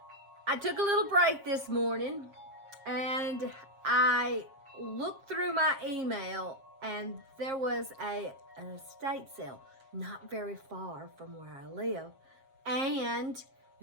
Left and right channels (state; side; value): late; left; 7.5 ms